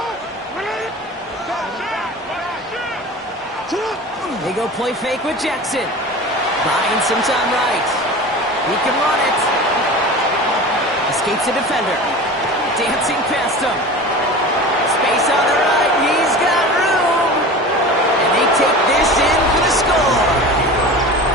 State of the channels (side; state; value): both; normal; correlation 0.35